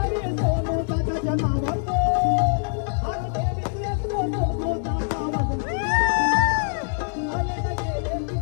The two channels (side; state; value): right; silent; digital silence